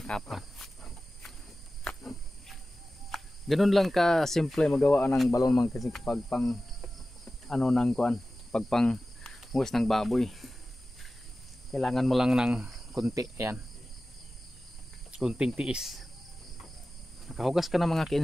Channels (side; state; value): both; normal; correlation 0.95